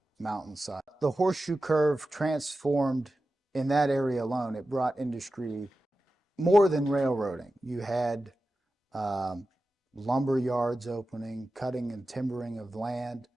mountainside. The horseshoe curve transformed in that area alone. It brought industry more than railroading. You had lumber yards opening, cutting and timbering of land,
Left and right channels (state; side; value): normal; both; correlation 0.93